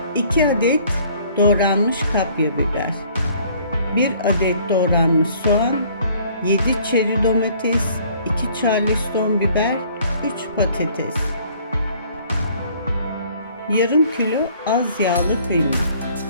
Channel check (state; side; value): inverted; both; correlation -0.57